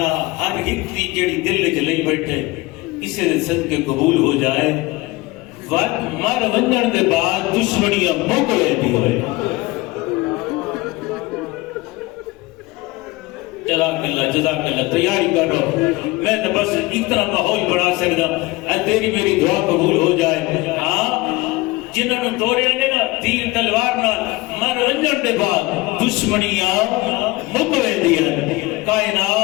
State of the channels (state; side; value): quieter; right; 21.5 dB